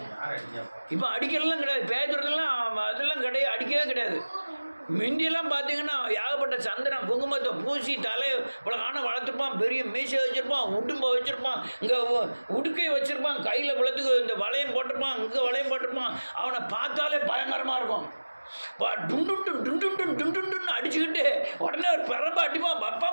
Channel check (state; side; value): inverted; both; correlation -1.00